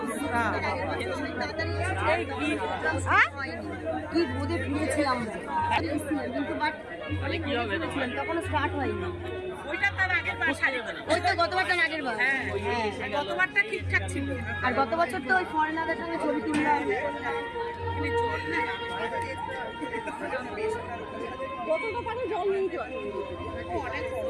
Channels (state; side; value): identical; both; correlation 1.00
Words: কি বোধে ফিরেছিলাম কিন্তু বাট তখন স্টার্ট হয়নি ওই তো গতবারটা আগের বার গতবারটা ঠিকঠাক ছিল আর গত বছর তো ওই ফরেনারদের সঙ্গে ছবি তুললাম জল নেই তো অনেক